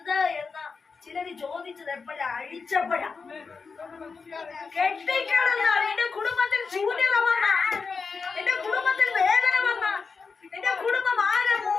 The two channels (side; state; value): right; quieter; 4.9 dB